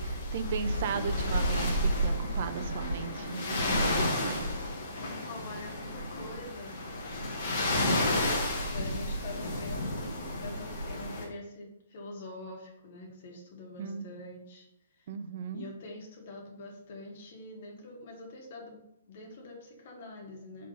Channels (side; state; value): both; inverted; correlation -0.62